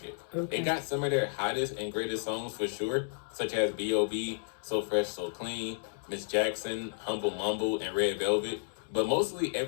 Okay. It got some of their hottest and greatest songs for sure, such as B.O.B., So Fresh, So Clean, Miss Jackson, Humble Mumble, and Red Velvet. But mostly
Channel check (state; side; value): silent; right; digital silence